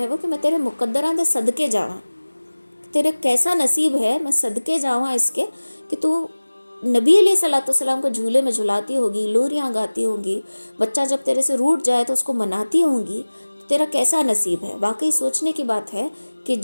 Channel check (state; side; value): inverted; both; correlation -1.00